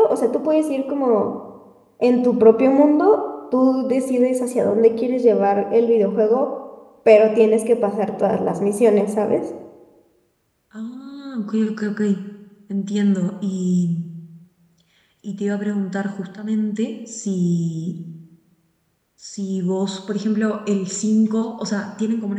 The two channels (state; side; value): identical; both; correlation 1.00